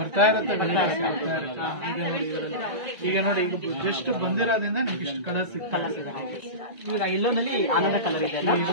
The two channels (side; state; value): left; late; 2.0 ms